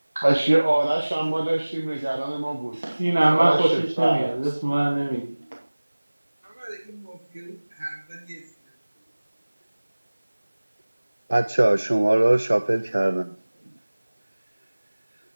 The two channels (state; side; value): inverted; both; correlation -1.00